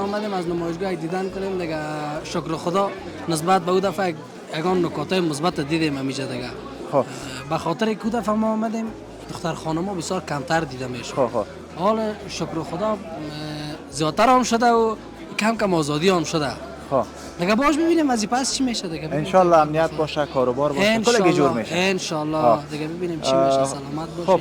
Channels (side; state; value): both; identical; correlation 1.00